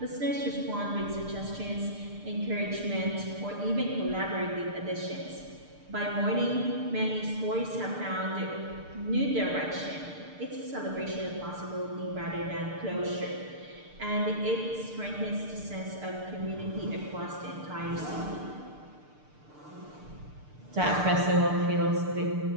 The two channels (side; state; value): left; late; 6.7 ms